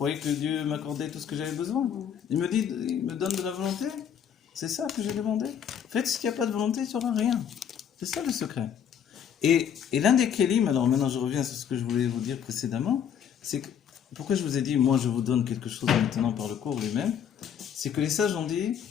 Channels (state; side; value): quieter; right; 8.5 dB